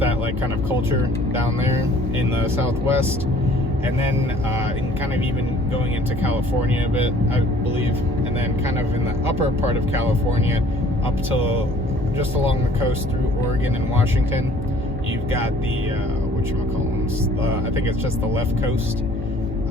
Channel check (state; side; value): normal; both; correlation 0.54